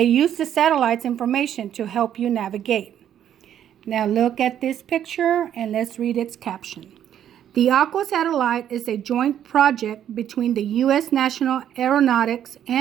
use the satellite's information to help you navigate. Now look at this picture and let's read its caption. The Aqua satellite is a joint project between the U.S. National Aeronautics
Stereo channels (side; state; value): left; quieter; 10.2 dB